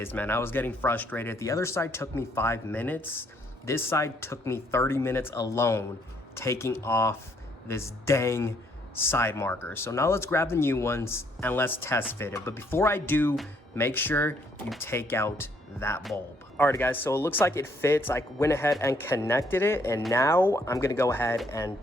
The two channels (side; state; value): both; normal; correlation 0.68